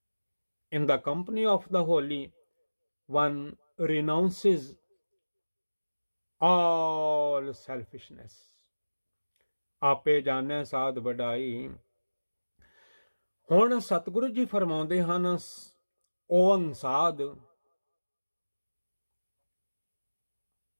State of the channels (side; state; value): both; inverted; correlation -1.00